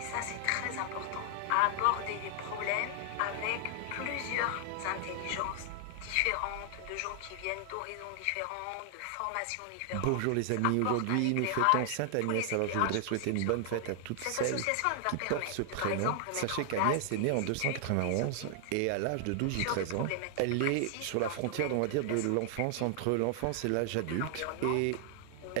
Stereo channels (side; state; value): both; different; correlation 0.00